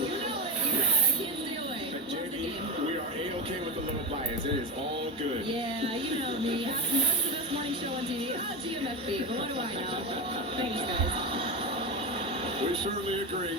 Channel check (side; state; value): both; normal; correlation 0.16